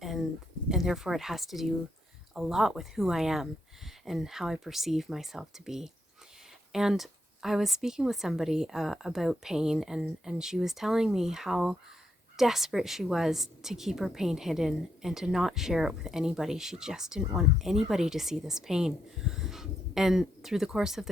and therefore it has to do a lot with who I am and how I perceive myself to be. And I was speaking with somebody about pain, and she was telling me how desperate she was to keep her pain hidden and to not share it with anybody. She just didn't want anybody to see this pain. And through the course of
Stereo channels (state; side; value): normal; both; correlation 0.79